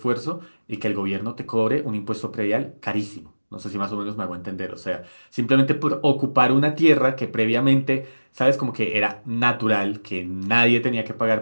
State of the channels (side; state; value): both; inverted; correlation -1.00